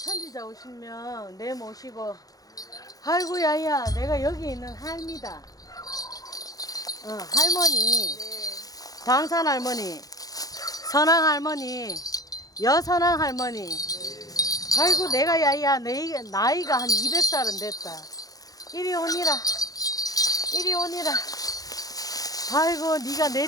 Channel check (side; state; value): right; late; 0.18 ms